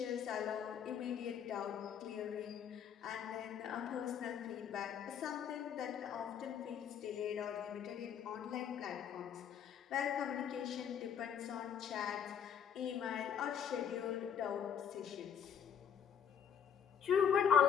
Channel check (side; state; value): right; quieter; 8.2 dB